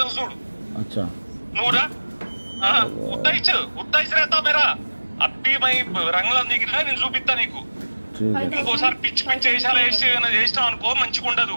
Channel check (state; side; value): inverted; both; correlation -1.00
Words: చూడు నువ్వురా ఉత్తయిచ్చు రేతా మేరా అప్పి మై రంగులో దిగినా నేను చూపిస్తా నీకు ఇంకోసారి పిచ్చి వేషాలు చేసినావు అనుకో మంచిగా ఉండదు